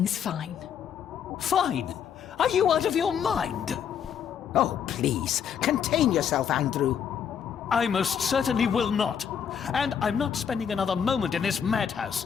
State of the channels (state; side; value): quieter; right; 8.0 dB